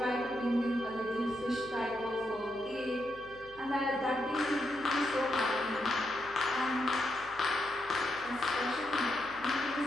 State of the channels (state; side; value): noise; left; hum, 23 dB below the sound